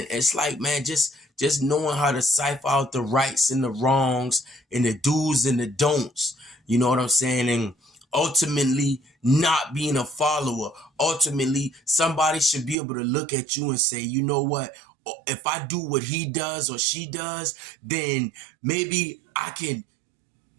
it's like, man, just knowing how to cipher out the rights and the wrongs and the do's and the don'ts. You know what I'm saying? And ultimately not being a follower. Ultimately, somebody should be able to look at you and say, you know what? If I do what he does or she does, then maybe I can,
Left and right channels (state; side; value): drops out; left; at 12.8 s